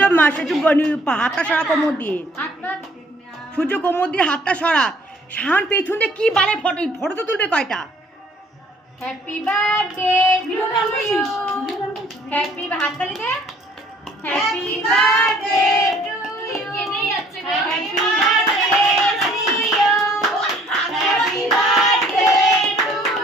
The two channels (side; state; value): both; normal; correlation 0.58